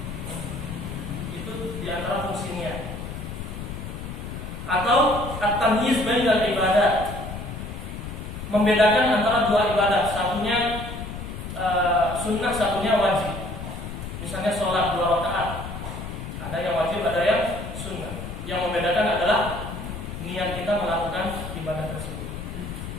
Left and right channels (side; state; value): left; noise; rumble, 8 dB below the sound